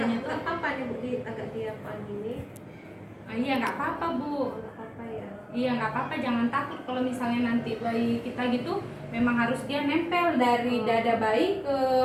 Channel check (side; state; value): both; identical; correlation 1.00